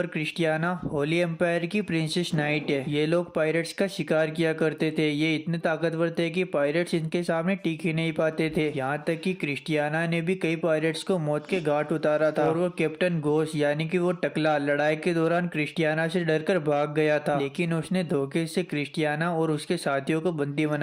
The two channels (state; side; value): identical; both; correlation 1.00